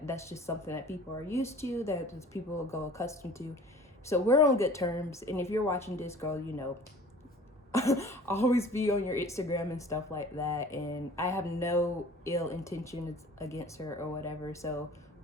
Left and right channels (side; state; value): both; normal; correlation 0.46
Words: that's just something that people are used to, that people will go accustomed to. So we're on good terms. And if you're watching this, girl, always be on your Instagram and stuff like that. And I have no ill intentions against her or whatever. So